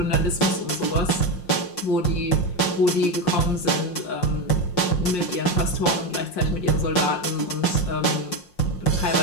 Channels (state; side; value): late; right; 5.6 ms